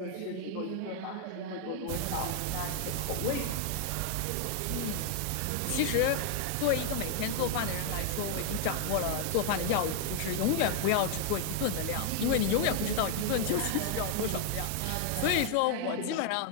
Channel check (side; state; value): both; different; correlation 0.00